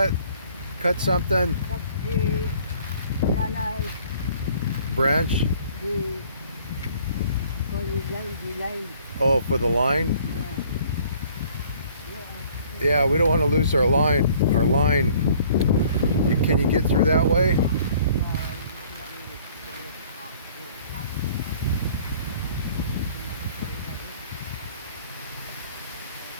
something? Cut the banana, Branch? the, the line. Oh, for the line? Yeah, we don't want to lose our line. Can you get through that way?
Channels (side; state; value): both; inverted; correlation -0.56